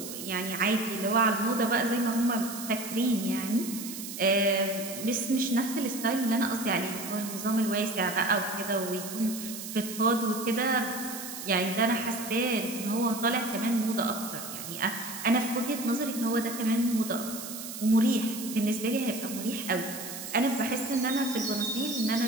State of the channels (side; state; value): right; noise; hiss, 9 dB below the sound